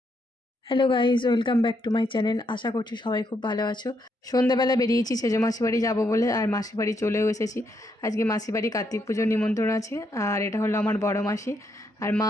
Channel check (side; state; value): both; normal; correlation 0.77